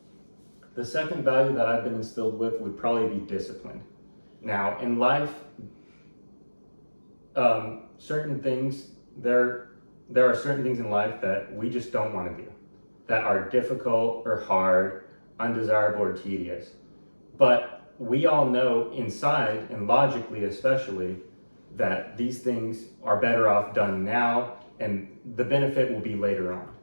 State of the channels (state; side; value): inverted; both; correlation -1.00